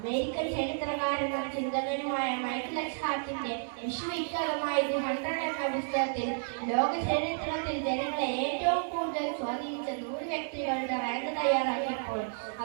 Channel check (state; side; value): silent; left; 57 dB below the other